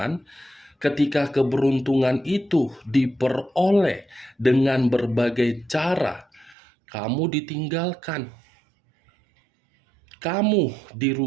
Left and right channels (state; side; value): drops out; left; at 6.6 s